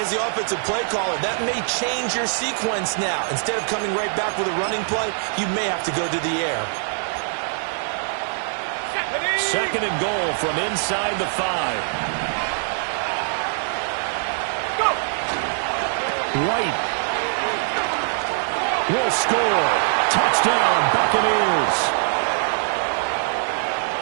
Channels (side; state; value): left; silent; digital silence